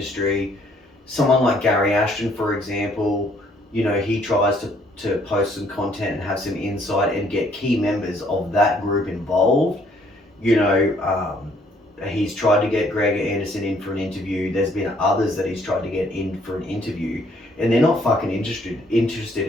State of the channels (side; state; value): both; normal; correlation 0.65